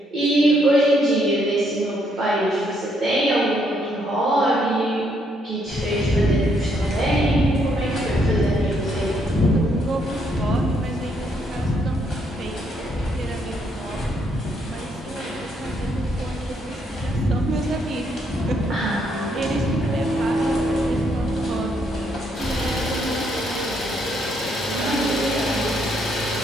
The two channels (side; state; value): both; normal; correlation 0.72